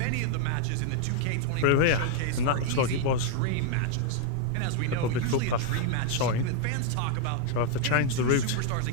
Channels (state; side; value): different; both; correlation 0.00